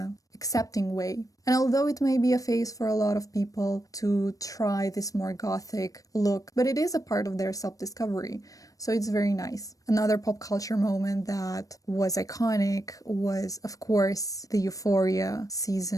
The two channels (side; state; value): right; late; 0.17 ms